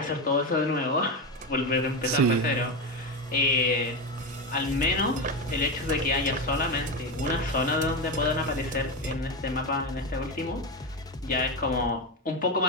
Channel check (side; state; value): both; normal; correlation 0.14